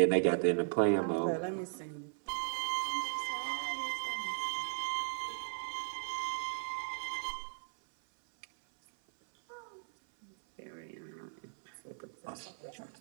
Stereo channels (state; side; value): silent; left; 53 dB below the other